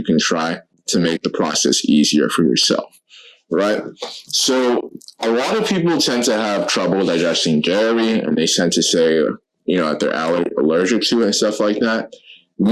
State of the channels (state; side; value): identical; both; correlation 1.00